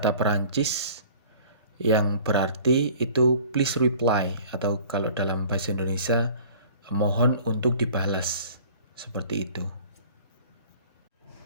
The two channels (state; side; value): inverted; both; correlation -0.48